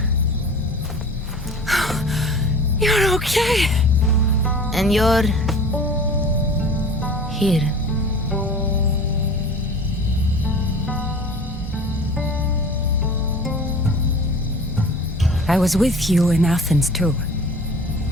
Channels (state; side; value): normal; both; correlation 0.41